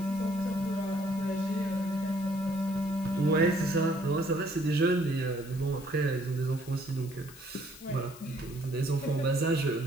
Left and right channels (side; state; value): left; noise; hiss, 19 dB below the sound